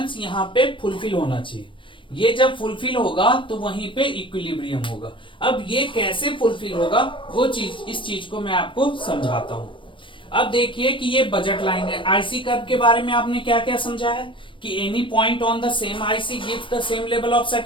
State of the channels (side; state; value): right; late; 0.24 ms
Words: यहां पे फुलफिल होना चाहिए। ये जब फुलफिल होगा तो वहीं पे इक्विलिब्रियम होगा। अब ये कैसे फुलफिल होगा वो चीज, इस चीज को मैं आपको समझाता हूं। अब देखिए कि ये बजट लाइन है। आईसी कर्व के बारे में आपने क्या क्या समझा है कि any point on the same IC gives the same level of